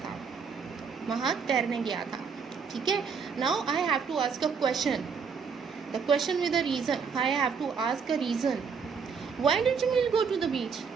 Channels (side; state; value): left; quieter; 5.9 dB